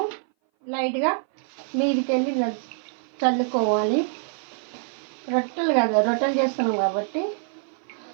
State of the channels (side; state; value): left; silent; 58 dB below the other